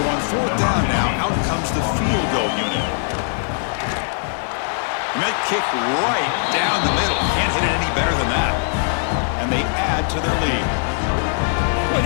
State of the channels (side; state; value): right; silent; 65 dB below the other